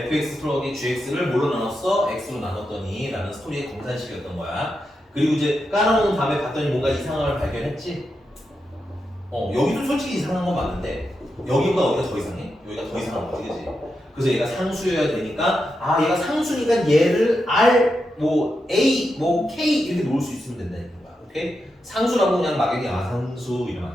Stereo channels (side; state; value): both; normal; correlation 0.87